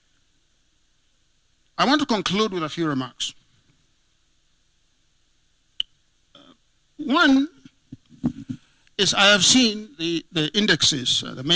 I want to conclude with a few remarks. One is I have seen the indexes, the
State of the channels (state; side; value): identical; both; correlation 1.00